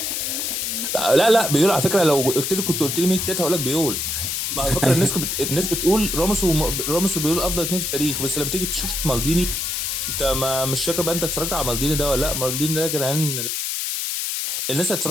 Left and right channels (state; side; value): noise; left; hiss, 1 dB below the sound